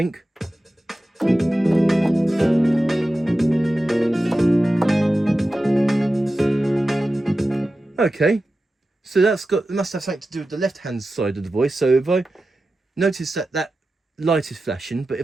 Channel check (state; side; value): normal; both; correlation 0.93